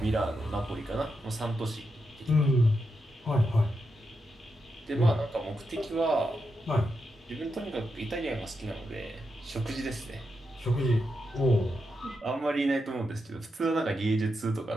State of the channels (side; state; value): both; normal; correlation 0.85